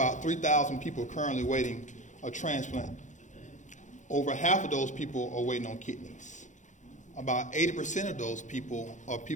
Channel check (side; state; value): right; late; 0.36 ms